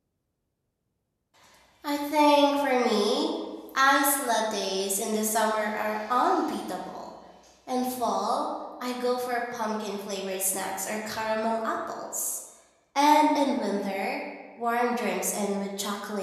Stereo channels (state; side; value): identical; both; correlation 1.00